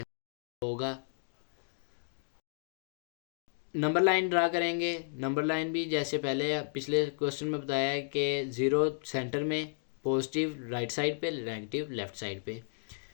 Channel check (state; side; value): silent; right; digital silence